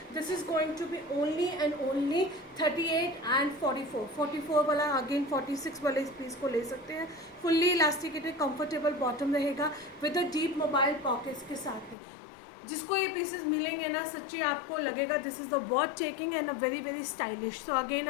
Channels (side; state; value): right; drops out; at 12.0 s